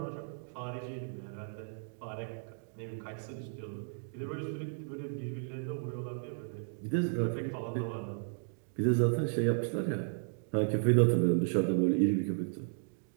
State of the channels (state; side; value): silent; left; digital silence